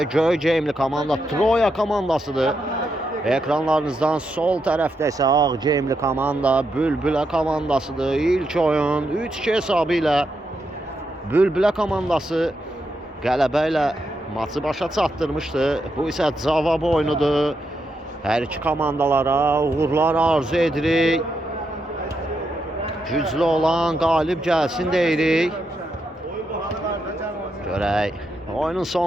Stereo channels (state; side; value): normal; both; correlation 0.83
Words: Göyceğimli komanda Troya komandasıdır. Ekranlarınızdan sol tərəfdə isə Ağceğimli komanda Bülbülə komandasıdır. İlk oyun 3-2 hesabı ilə Bülbülə komandası qələbə ilə maçı başa çatdırmışdı. Bu isə cavab oyunudur. Hər iki komandalara uğurlar arzu edirik. Güclü olan qalib gəlsin deyirik. Görək, oyunun